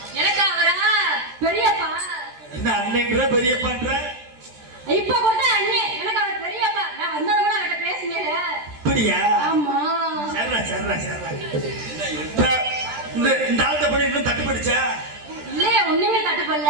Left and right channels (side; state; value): left; late; 13 ms